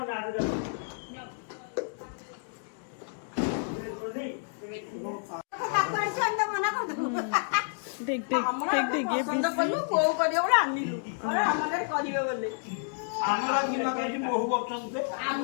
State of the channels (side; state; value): right; silent; digital silence